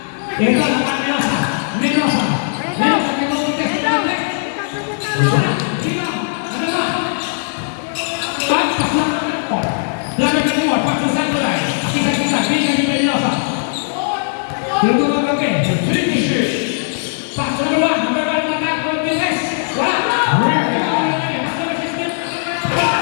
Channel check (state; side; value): silent; right; digital silence